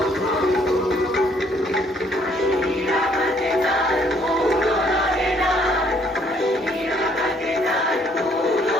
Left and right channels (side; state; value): both; normal; correlation 0.65